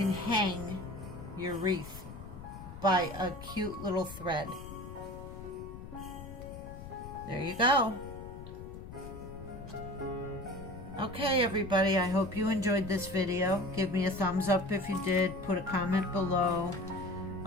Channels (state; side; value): noise; left; rumble, 12 dB below the sound